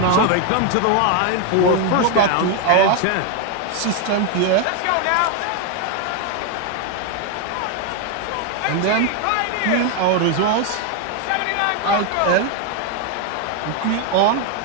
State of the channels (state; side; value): different; both; correlation 0.01